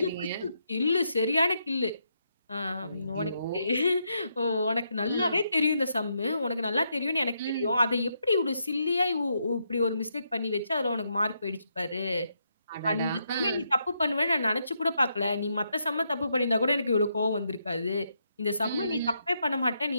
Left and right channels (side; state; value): both; inverted; correlation -0.79